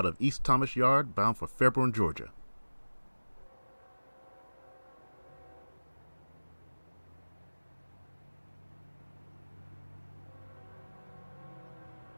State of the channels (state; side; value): inverted; both; correlation -1.00